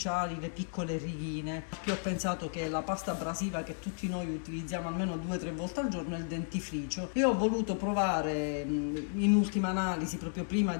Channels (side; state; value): right; silent; digital silence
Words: le piccole righine. Che ho pensato che la pasta abrasiva che tutti noi utilizziamo almeno 2 o 3 volte al giorno è il dentifricio, e ho voluto provare in ultima analisi, proprio prima